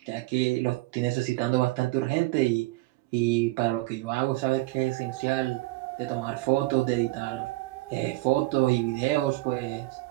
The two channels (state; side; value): quieter; left; 20.7 dB